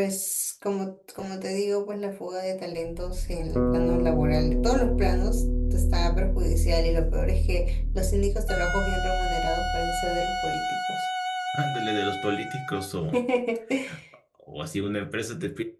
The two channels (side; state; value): both; identical; correlation 1.00